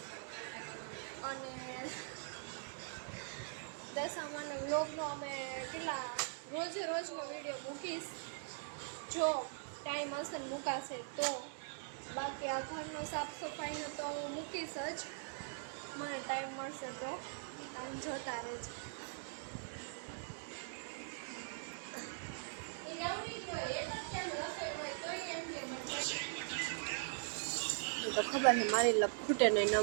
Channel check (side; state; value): left; silent; digital silence